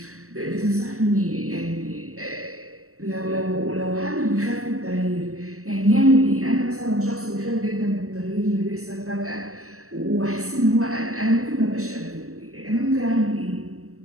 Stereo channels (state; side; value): late; left; 0.64 ms